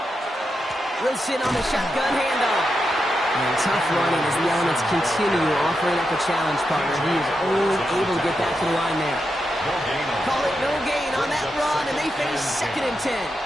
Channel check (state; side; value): normal; both; correlation 0.86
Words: Wilson on the shotgun handoff. And tough running as the elements continue offering up a challenge, partner. He is only able to get back to the line there. Call it no gain on that run, and they face 2nd and 10.